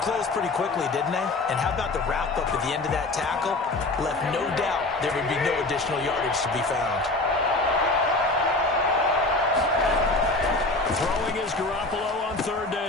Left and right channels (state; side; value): quieter; right; 3.0 dB